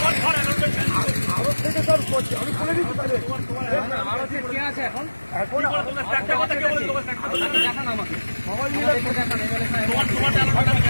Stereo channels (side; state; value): both; inverted; correlation -1.00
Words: আরো থেকে সব করছি, আমি খুলে দিচ্ছি। কে আছে এখন? এখন একটা কথা কে বলে তোমার দেখান আমাকে, সবাই মিলে আমি